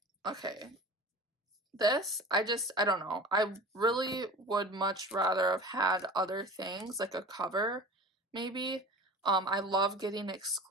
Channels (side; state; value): both; normal; correlation 0.36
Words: Okay. This, I don't know. I really would much rather have had other things, like a cover, maybe. I love getting